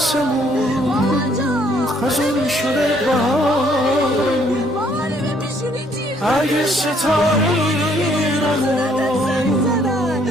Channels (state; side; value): normal; both; correlation 0.65